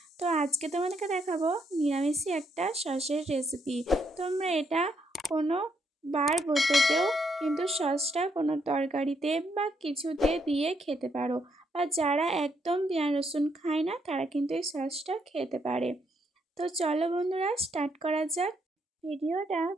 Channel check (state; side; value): normal; both; correlation 0.75